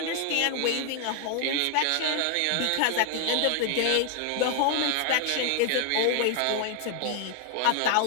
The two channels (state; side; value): different; both; correlation 0.00